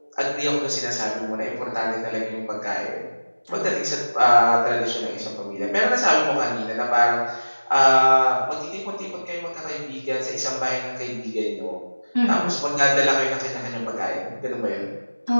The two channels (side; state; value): both; inverted; correlation -1.00